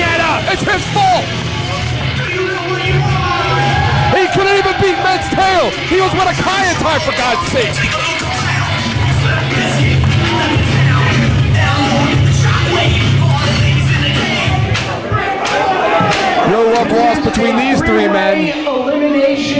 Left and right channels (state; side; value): identical; both; correlation 1.00